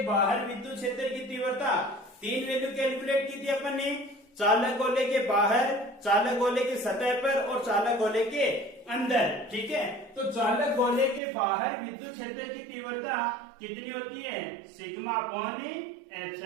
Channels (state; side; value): drops out; left; at 11.2 s